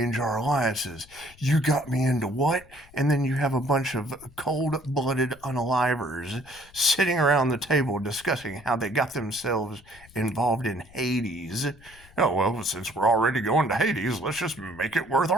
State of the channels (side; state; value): left; noise; rumble, 24 dB below the sound